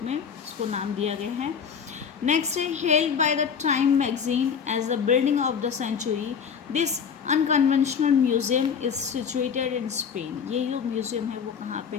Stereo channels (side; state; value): right; quieter; 6.8 dB